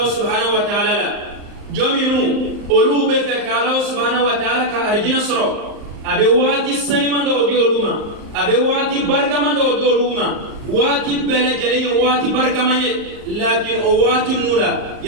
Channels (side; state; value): left; late; 38 ms